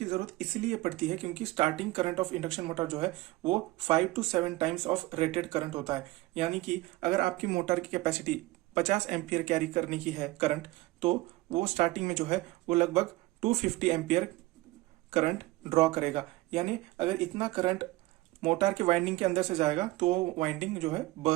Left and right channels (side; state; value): left; quieter; 19.4 dB